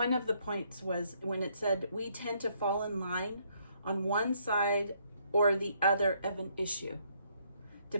of the points was when it said, we tend to fall in line on one side or the other of an issue,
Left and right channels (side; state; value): both; inverted; correlation -0.70